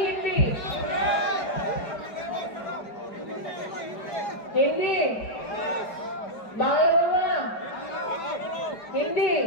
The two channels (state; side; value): late; right; 4.9 ms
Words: হিন্দি? হিন্দি বাংলা বলবো না, হিন্দি।